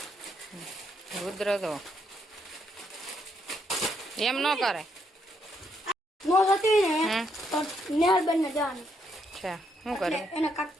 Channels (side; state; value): both; normal; correlation 0.75